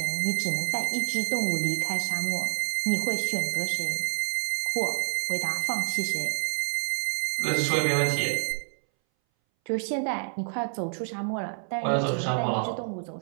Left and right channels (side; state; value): left; silent; 59 dB below the other